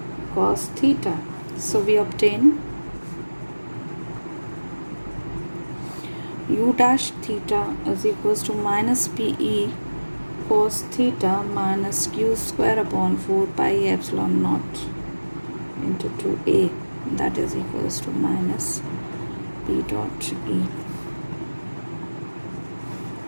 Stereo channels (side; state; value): both; inverted; correlation -1.00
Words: cos theta. So we obtain U dash theta is equals to minus PE cos theta minus Q square upon 4 pi epsilon naught into 2A, that is equals to minus P dot E.